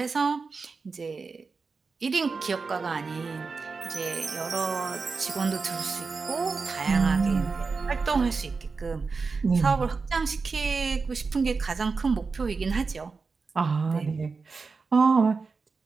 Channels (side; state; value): left; quieter; 4.5 dB